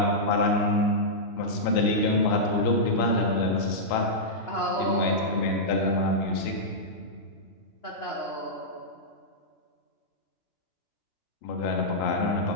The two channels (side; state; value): right; late; 2.9 ms